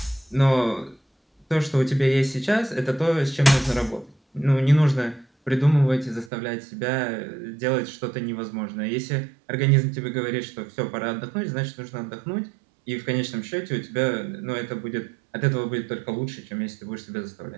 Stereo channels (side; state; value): left; drops out; at 6.3 s